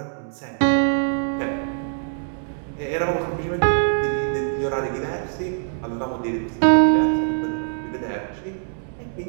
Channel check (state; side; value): silent; left; digital silence